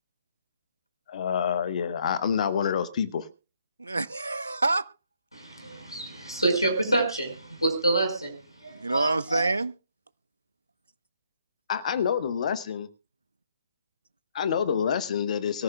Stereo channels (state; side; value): inverted; both; correlation -0.70